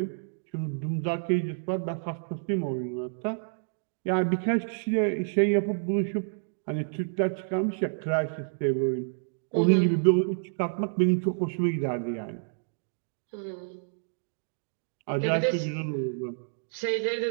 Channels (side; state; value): left; silent; digital silence